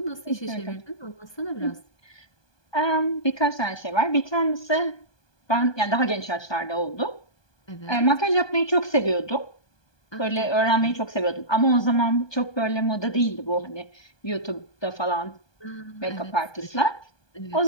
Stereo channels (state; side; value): late; right; 1.2 ms